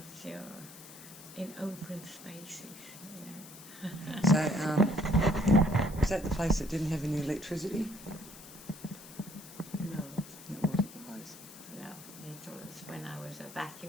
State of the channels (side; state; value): left; noise; hiss, 17 dB below the sound